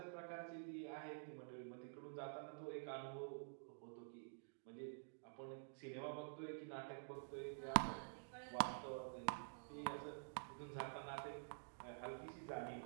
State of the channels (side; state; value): left; silent; digital silence